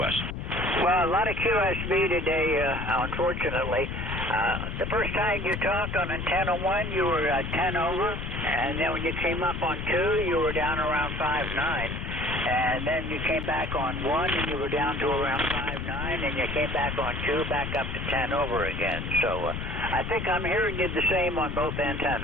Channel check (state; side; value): noise; left; rumble, 5 dB below the sound